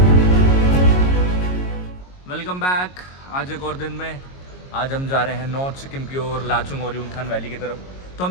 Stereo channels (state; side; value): late; right; 22 ms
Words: Welcome back. आज एक और दिन में आज हम जा रहे हैं नॉर्थ सिक्किम की ओर, लाचुंग और युमथांग वैली की तरफ। तो